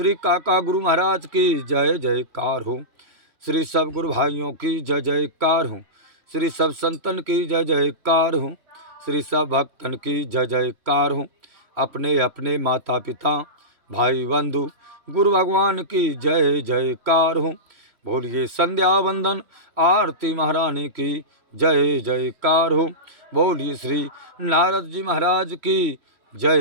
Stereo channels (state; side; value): late; left; 3.1 ms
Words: काका गुरु महाराज की जय जयकार हो। श्री सब गुरु भाइयों की जय जयकार हो। श्री सब संतन की जय जयकार हो। श्री सब भक्तन की जय जयकार हो। अपने अपने माता पिता भाई बंधु गुरु भगवान की जय जयकार हो। बोलिए संध्या वंदन आरती महारानी की जय जयकार हो। बोलिए श्री नारद जी महाराज की